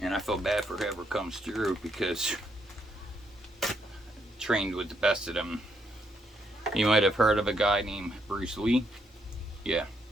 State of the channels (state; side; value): normal; both; correlation 0.76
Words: And I feel bad for whoever comes through because I trained with the best of them. You might have heard of a guy named Bruce Lee. Yeah,